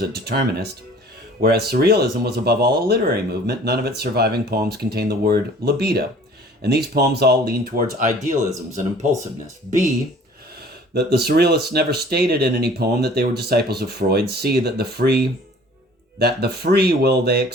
a determinist. Whereas surrealism was above all a literary movement, none of its surviving poems contain the word libido. And these poems all lean towards idealisms and impulsiveness. B, that the surrealists never stated in any poem that they were disciples of Freud. C, that the free will they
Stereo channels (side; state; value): both; normal; correlation 0.50